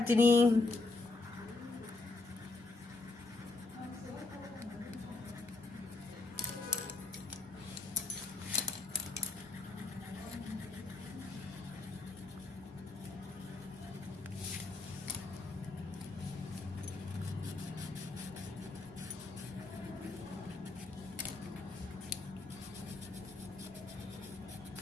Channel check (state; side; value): quieter; right; 3.5 dB